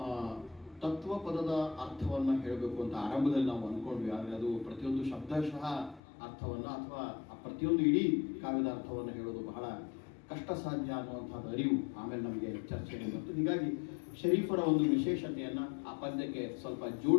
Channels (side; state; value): right; drops out; at 6.0 s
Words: ತತ್ವ ಪದದ ಅರ್ಥವನ್ನು ಹೇಳಬೇಕು ಅಂತ ಆರಂಭದಲ್ಲಿ ನಾವು ಅಂದ್ಕೊಂಡ್ವಿ. ಆದರೆ ಅದು ಪ್ರತಿಯೊಂದು ಶಬ್ದಶಃ ಅರ್ಥವನ್ನು ಅಥವಾ ಪ್ರತಿಯೊಂದು ಇಡೀ ಕಾವ್ಯದ ಅರ್ಥವನ್ನು ಹೇಳೋದು ಬಹಳ ಕಷ್ಟ ಸಾಧ್ಯ ಅನ್ನುವಂಥದ್ದು ಅರಿವು ಆಮೇಲೆ ನಮಗೆ ಚರ್ಚೆಗೆ ಬಂತು. ಹೀಗಾಗಿ ಶರೀಫರ ಒಂದು ವಿಶೇಷತೆಯನ್ನು ಆ ಪದ್ಯಕ್ಕೆ ಸ್ವಲ್ಪ